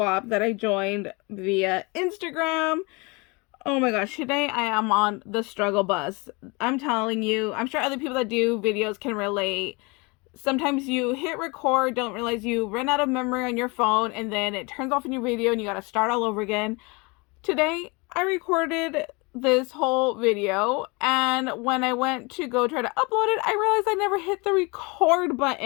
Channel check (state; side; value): quieter; right; 27.8 dB